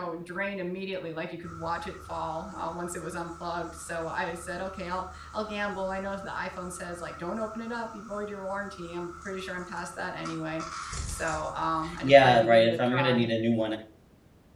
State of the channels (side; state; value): both; identical; correlation 1.00